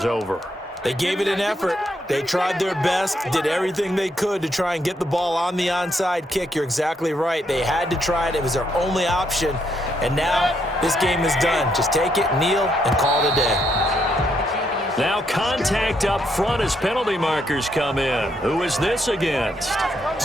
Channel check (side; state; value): both; normal; correlation 0.76